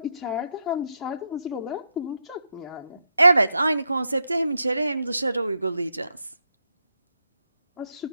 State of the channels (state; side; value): inverted; both; correlation -0.82